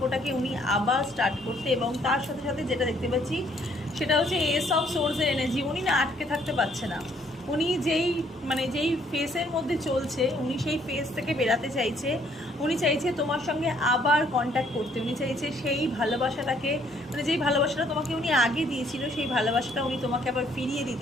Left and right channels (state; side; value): normal; both; correlation 0.65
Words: উনি আবার স্টার্ট করতে, এবং তার সাথে সাথে যেটা দেখতে পাচ্ছি সেটা হচ্ছে এস অফ সোর্সের এনার্জি। উনি না আটকে থাকতে পারছে না, উনি যেই ফেসের মধ্যে চলছে উনি সেই ফেস থেকে বেরাতে চাইছে। উনি চাইছে তোমার সঙ্গে আবার কন্ট্যাক্ট করতে, উনি চাইছে সেই ভালোবাসাটাকে, যেই ভালোবাসাটা তোমাকে উনি আগে দিয়েছিল সেই ভালোবাসাটা উনি তোমাকে আবার ফিরিয়ে